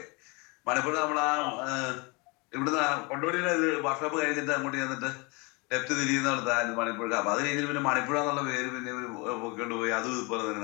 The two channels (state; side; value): quieter; right; 28.6 dB